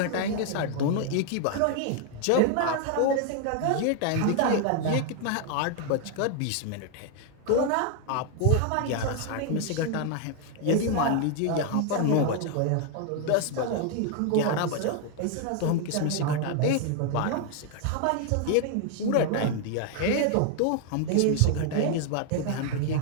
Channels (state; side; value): different; both; correlation 0.00